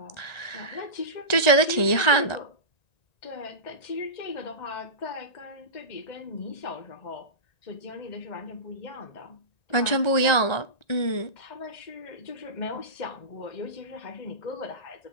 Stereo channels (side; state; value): right; late; 1.9 ms